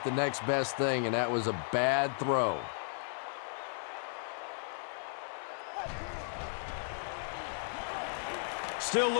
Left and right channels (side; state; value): right; silent; 54 dB below the other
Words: the next best thing, and that was a bad throw. Still